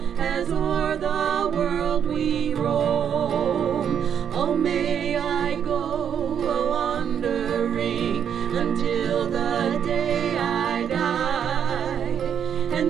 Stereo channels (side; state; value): left; quieter; 8.4 dB